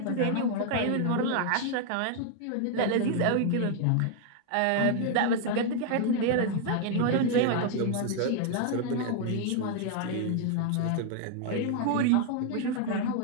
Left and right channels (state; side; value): different; both; correlation 0.00